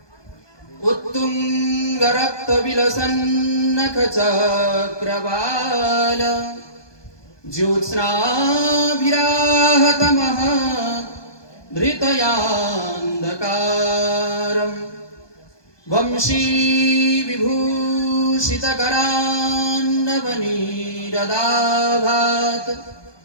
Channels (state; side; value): late; right; 1.2 ms